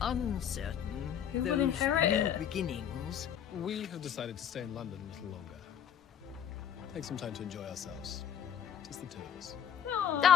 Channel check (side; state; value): right; quieter; 9.1 dB